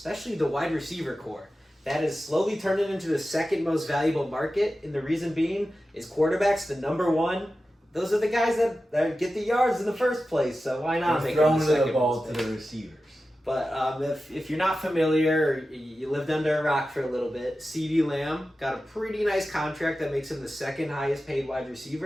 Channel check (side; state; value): both; normal; correlation 0.93